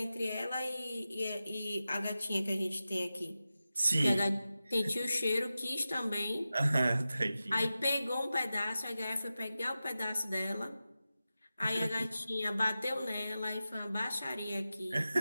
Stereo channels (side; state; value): both; inverted; correlation -0.93